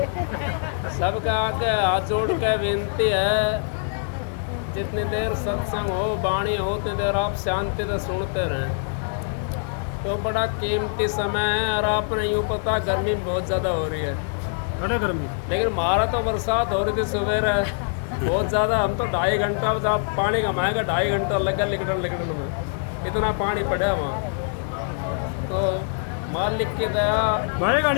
सबका आगे हाथ जोड़ के विनती है, जितनी देर सत्संग हो वाणी हो उतनी देर आप शांति से सुनते रहें। तो बड़ा कीमती समय है और आपने यूँ पता गर्मी बहुत ज़्यादा हो रही है, बड़ा गर्मी। लेकिन हमारा तो बरसात हो रही थी सुबह बहुत ज़्यादा। हम तो 2.5 घंटा जब पानी कमाएगा 2.5 घंटा लगा लिकड़न में, इतना पानी पड़ा वहाँ। तो मालिक की दया, भाई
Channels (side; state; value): right; silent; digital silence